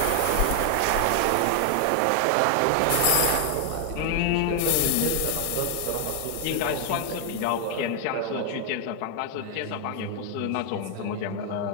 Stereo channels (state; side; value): different; both; correlation 0.00